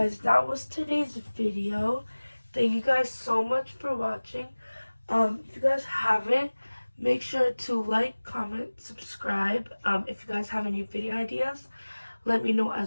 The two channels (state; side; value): inverted; both; correlation -1.00